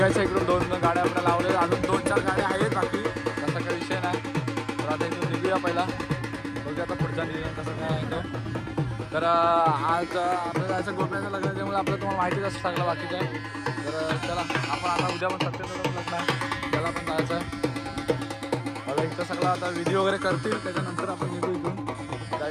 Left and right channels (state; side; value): identical; both; correlation 1.00